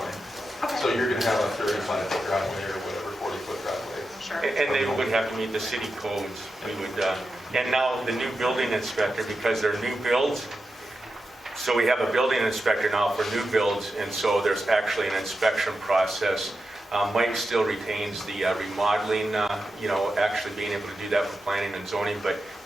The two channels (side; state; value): both; normal; correlation 0.89